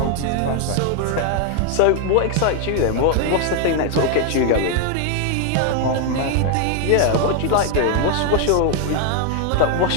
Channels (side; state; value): both; different; correlation 0.00